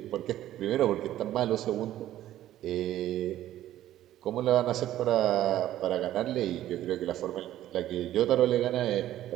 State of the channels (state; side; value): quieter; left; 13.2 dB